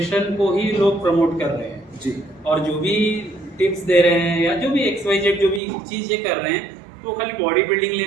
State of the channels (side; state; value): left; drops out; at 5.6 s